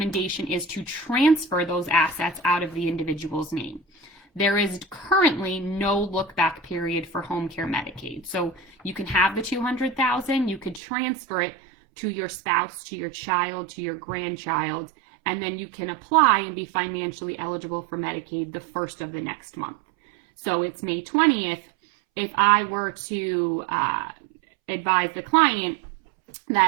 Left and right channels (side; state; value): left; drops out; at 10.8 s